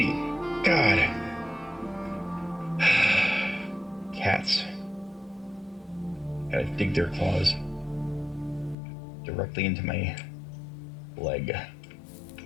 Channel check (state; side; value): drops out; right; at 8.8 s